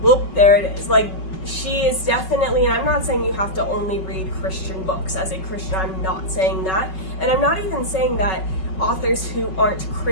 there it is. Like, she is definitely, and I'm not saying you have to only read Christian books as a Christian, I'm not saying that. And I'm not even saying that authors who aren't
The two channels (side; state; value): right; late; 5.4 ms